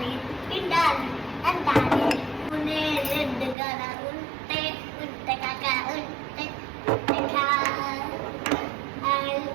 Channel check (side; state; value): left; drops out; at 3.6 s